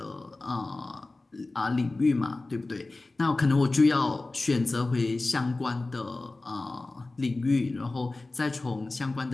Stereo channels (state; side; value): quieter; right; 3.1 dB